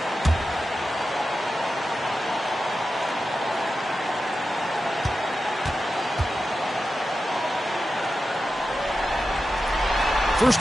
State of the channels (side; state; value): both; normal; correlation 0.91